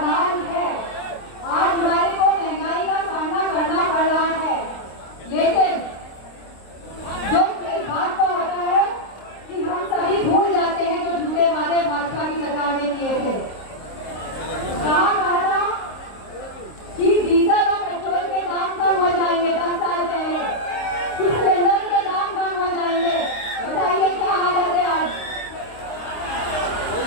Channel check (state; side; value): late; right; 26 ms